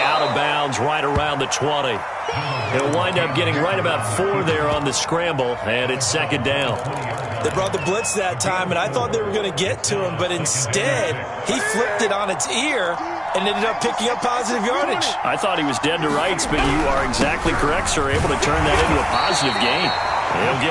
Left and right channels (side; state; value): both; identical; correlation 1.00